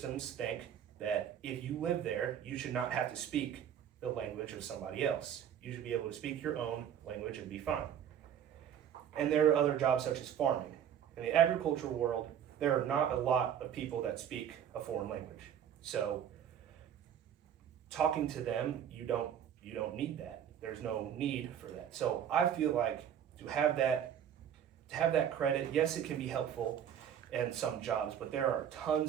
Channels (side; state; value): left; quieter; 9.3 dB